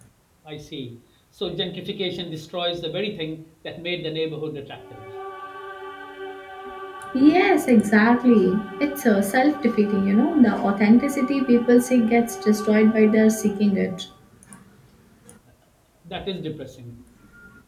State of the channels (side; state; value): both; identical; correlation 1.00